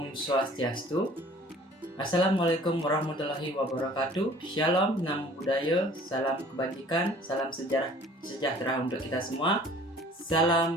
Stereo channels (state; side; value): normal; both; correlation 0.51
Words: Swastiastu. Assalamualaikum warahmatullahi wabarakatuh. Shalom, namo buddhaya, salam kebajikan, salam sejahtera untuk kita semua.